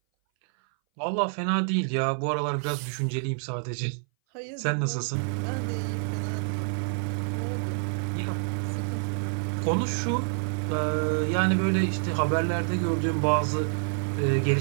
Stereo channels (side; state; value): left; silent; 59 dB below the other